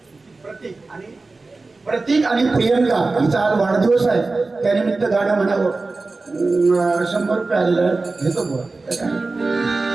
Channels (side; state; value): left; quieter; 3.6 dB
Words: प्रतीक आणि प्रियंका हिचा आज वाढदिवस आहे. त्यानिमित्त गाणं म्हणावं. 100 रुपये आलेलं आहे. घेतो बुवा.